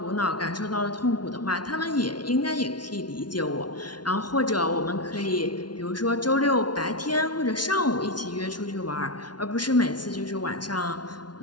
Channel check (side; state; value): right; late; 0.70 ms